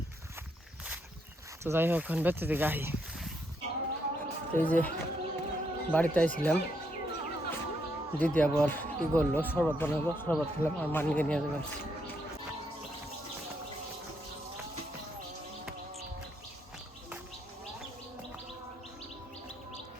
তো যাই হোক এখন বেঁচে থেকে আহি, এই যে বাড়িতে আইছিলাম, দিদি আবার কি করলো শরবত বানাবো, শরবত খেলাম আর মানিকে নিয়ে যাবেন।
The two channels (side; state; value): both; normal; correlation 0.76